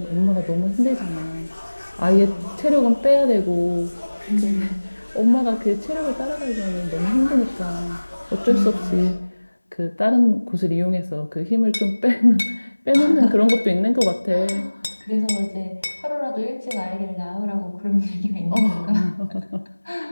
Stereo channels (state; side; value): inverted; both; correlation -1.00